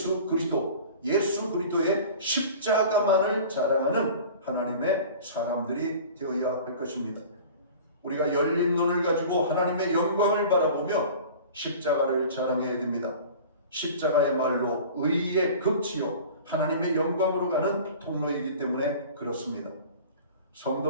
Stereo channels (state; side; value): inverted; both; correlation -0.41